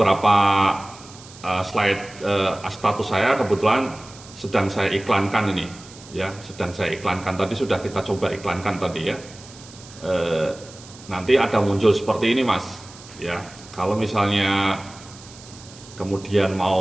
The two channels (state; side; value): noise; right; hiss, 20 dB below the sound